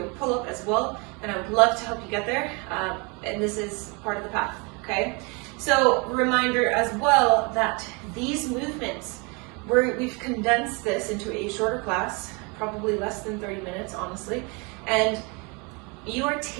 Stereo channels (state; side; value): quieter; left; 30.6 dB